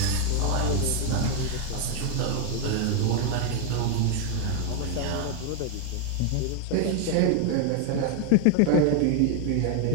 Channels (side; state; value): both; different; correlation 0.01